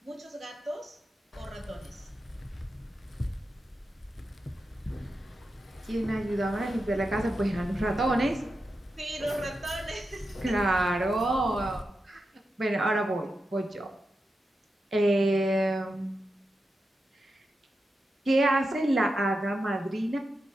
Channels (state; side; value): normal; both; correlation 0.89